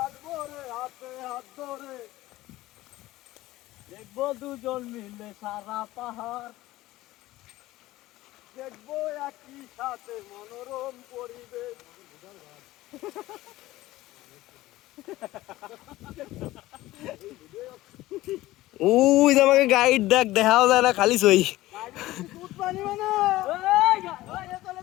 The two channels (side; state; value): right; quieter; 17.1 dB